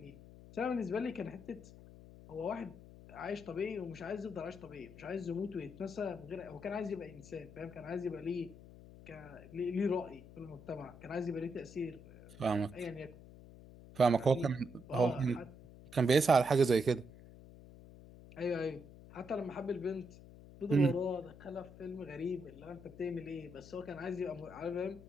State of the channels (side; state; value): left; noise; hum, 18 dB below the sound